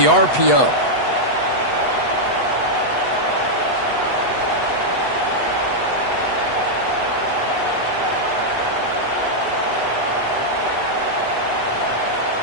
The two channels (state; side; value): late; right; 8.1 ms